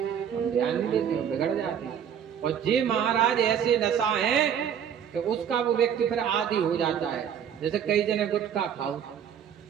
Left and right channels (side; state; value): left; quieter; 8.6 dB